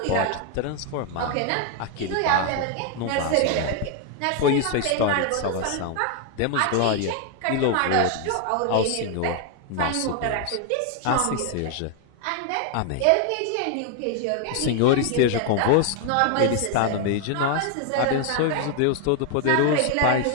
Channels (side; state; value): both; different; correlation 0.00